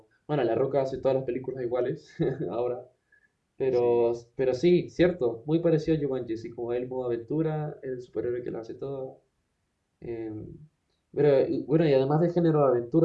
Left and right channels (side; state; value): both; identical; correlation 1.00